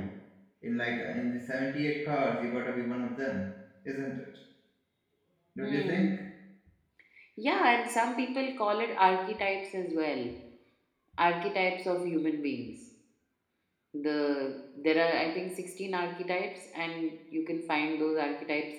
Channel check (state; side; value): identical; both; correlation 1.00